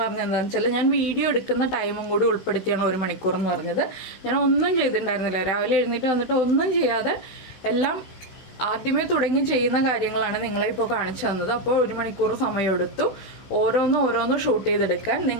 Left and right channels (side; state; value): right; late; 16 ms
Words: പറഞ്ഞത് എന്താണെന്ന് വെച്ചാൽ ഞാൻ വീഡിയോ എടുക്കുന്ന ടൈമും കൂടി ഉൾപ്പെടുത്തിയാണ് 1 മണിക്കൂർ എന്ന് പറഞ്ഞത്. ഞാൻ ഒന്നും ചെയ്തിട്ടുണ്ടായിരുന്നില്ല. രാവിലെ എഴുന്നേറ്റ് വന്നിട്ട് ഒന്നും ചെയ്യാതെ എല്ലാം ആദ്യമേ തുടങ്ങി ചെയ്യുന്ന കാര്യങ്ങളാണ് നിങ്ങളെ ഇപ്പോൾ കാണിച്ചു തന്നത്. അപ്പോൾ 1 മണിക്കൂർ സമയമെടുത്തു ഓരോന്ന് ഷൂട്ട് ചെയ്തെടുക്കാൻ.